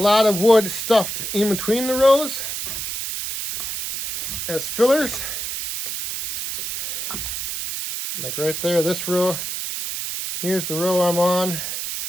of wood stuffed in between the rows as fillers. Like right there, this row, here's the row I'm on.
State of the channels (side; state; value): right; noise; hiss, 4 dB below the sound